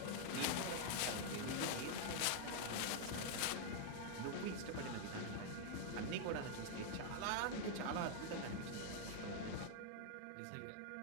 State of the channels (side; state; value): both; different; correlation 0.00